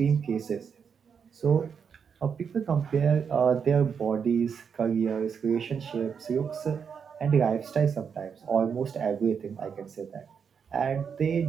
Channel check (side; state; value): left; quieter; 6.7 dB